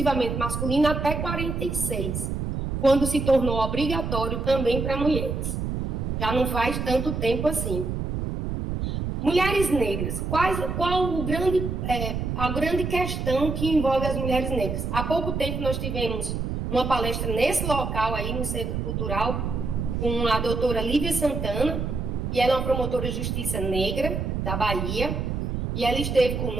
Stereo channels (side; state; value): right; noise; rumble, 3 dB below the sound